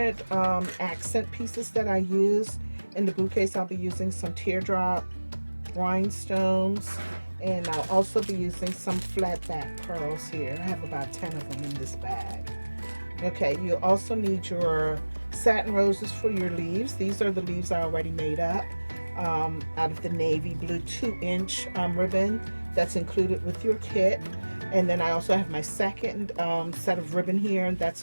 accent pieces that I use. In the bouquets, I'll be using some teardrop rhinestones, and I'll also be using some flat back pearls here. I have about 10 of them in this bag. Okay, you also need your satin roses for your leaves. These are the leaves I already made up out of the navy blue 2-inch ribbon that's included with your kit. And then I also have my second set of ribbon here, and that's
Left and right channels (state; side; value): inverted; both; correlation -1.00